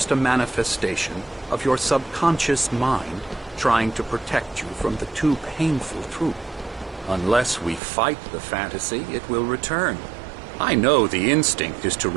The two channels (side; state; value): left; drops out; at 7.8 s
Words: a manifestation of your subconscious mind trying to protect you from the too painful truth. Unless we fight the fantasy, it will return. I know the instinct is to